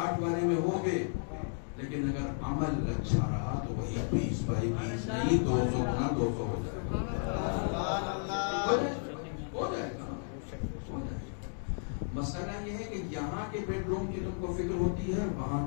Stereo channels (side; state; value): right; silent; digital silence